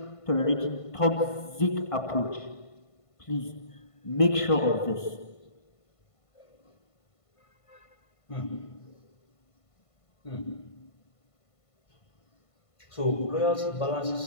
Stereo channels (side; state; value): right; late; 1.5 ms